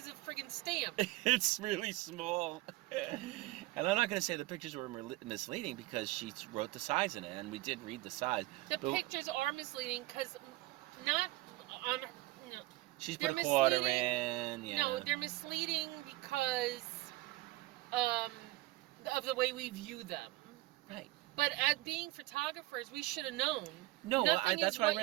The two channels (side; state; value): left; quieter; 19.2 dB